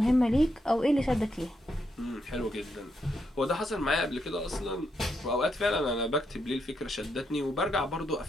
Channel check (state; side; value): normal; both; correlation 0.80